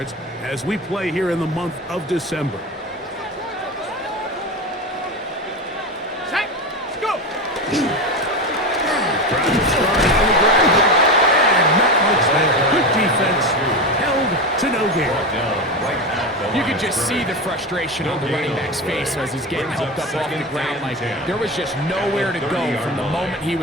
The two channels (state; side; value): normal; both; correlation 0.21